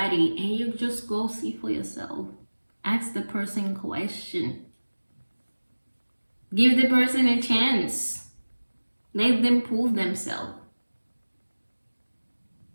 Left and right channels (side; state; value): both; inverted; correlation -1.00